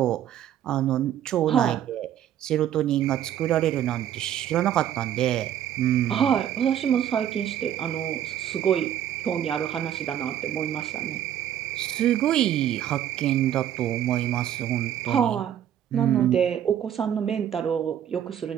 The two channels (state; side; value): quieter; left; 10.4 dB